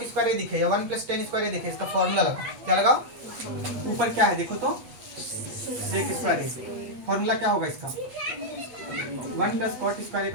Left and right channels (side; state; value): left; late; 8.3 ms